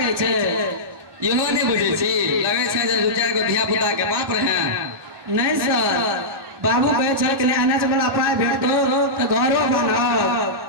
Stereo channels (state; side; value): late; left; 1.1 ms